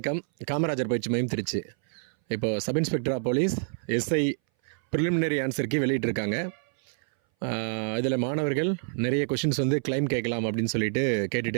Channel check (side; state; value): left; silent; 59 dB below the other